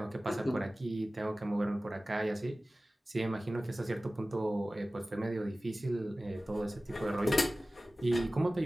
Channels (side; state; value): both; normal; correlation 0.97